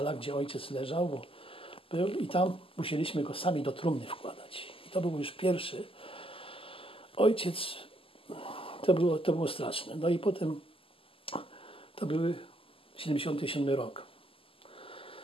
gdzie ojciec leżał, bo był i tam musieliśmy go sami do trumny wkładać. I to był już pierwszy. Ojciec, to było straszne. No i potem to były 77 rok.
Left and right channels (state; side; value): late; right; 0.26 ms